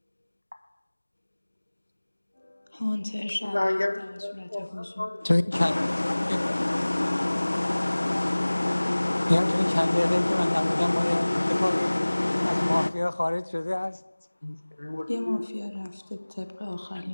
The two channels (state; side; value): inverted; both; correlation -1.00